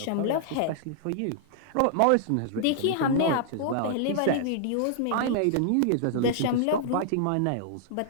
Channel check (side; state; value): both; different; correlation -0.01